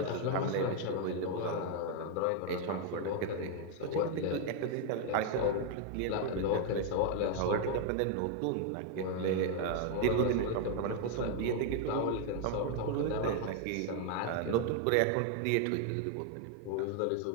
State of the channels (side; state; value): both; different; correlation 0.00